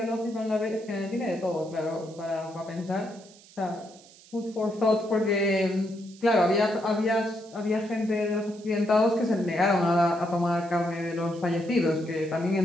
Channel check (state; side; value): noise; right; hiss, 24 dB below the sound